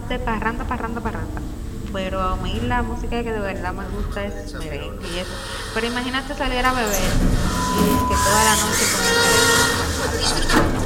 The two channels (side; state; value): both; identical; correlation 1.00